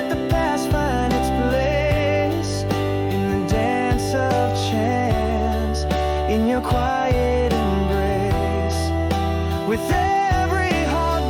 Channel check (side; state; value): both; identical; correlation 1.00